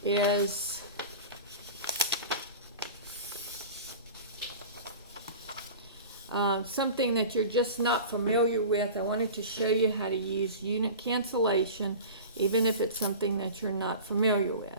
Is something that you're just not familiar with. I wanted to show you how to use unit cancellation, even if it's something that you're not familiar with.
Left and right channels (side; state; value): both; inverted; correlation -0.35